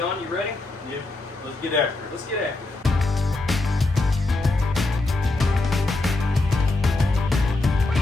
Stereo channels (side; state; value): right; quieter; 3.0 dB